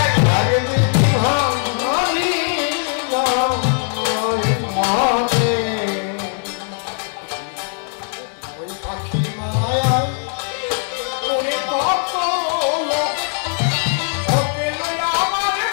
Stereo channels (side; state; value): right; silent; 57 dB below the other